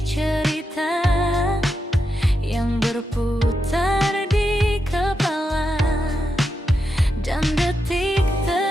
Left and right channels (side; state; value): both; normal; correlation 0.86